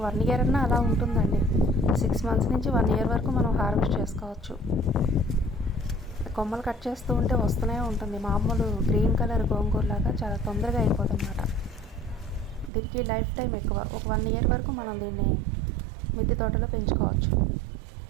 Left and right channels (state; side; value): drops out; left; at 12.7 s